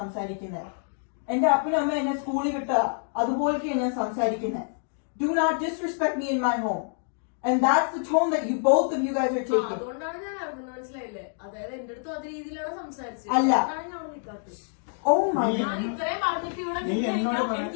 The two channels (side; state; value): right; silent; digital silence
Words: എന്റെ അപ്പനും അമ്മ എന്നെ സ്കൂളിൽ വിട്ട അതുപോലെയൊക്കെയാണ് ഞാൻ സംസാരിക്കുന്നത്. Do not disrespect me in my home. And that's the tone that you both of you guys are taking. അതുകൊണ്ടാണ് ഞാൻ അറിഞ്ഞത്, മനസ്സിലായില്ലേ? അതായത് എന്റെ അടുത്തും അതേ രീതിയിലാണ് സംസാരിച്ചത്. അല്ല. Oh my God. ഞാൻ ഇത്രയും പറഞ്ഞിട്ട് ഇവിടെ നീ